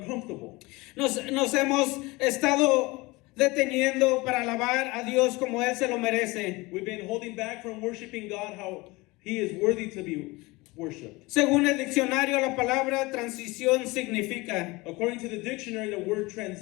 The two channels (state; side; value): quieter; right; 22.9 dB